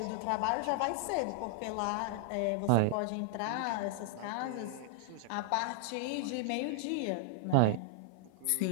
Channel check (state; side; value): different; both; correlation -0.01